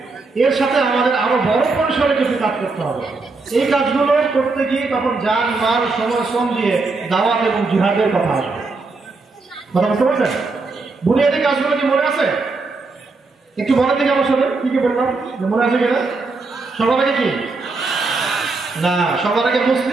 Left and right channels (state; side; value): quieter; left; 3.8 dB